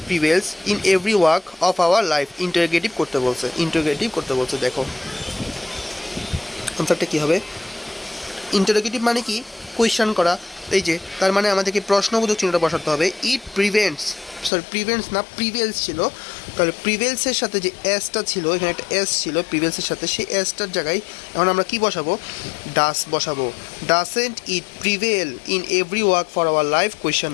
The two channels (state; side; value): drops out; right; at 14.5 s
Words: prevails in every walk of our life. Interrogative করতে বলছে, ইন্টারোগেটিভ করতে বলছে। দেখো আনসারটা কী হবে? ইন্টারোগেটিভ মানে কি? কোয়েশ্চেন করা। এই যে তার মানে আমাদেরকে প্রশ্নবোধক চিহ্নটা বসাতে হবে। ইট প্রিভেন্টস না প্রিভেলস ছিল, তাহলে প্রিভেলসের সাথে যে এসটা ছিল, এখানে একটা এস ছিল প্রিভেলসের সাথে, সেই এসটার জায়গায় এখন আমরা কি বসাবো? ডাস বসাবো। Doesn't it prevail in every walk for our life